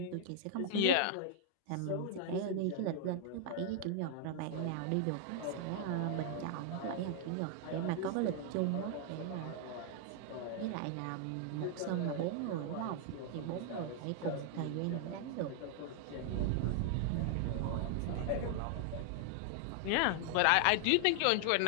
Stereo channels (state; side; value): different; both; correlation 0.00